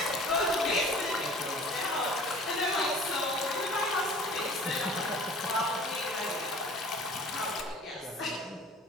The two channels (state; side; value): normal; both; correlation 0.46